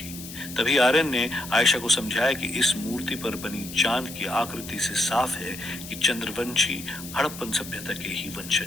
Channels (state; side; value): noise; left; hiss, 12 dB below the sound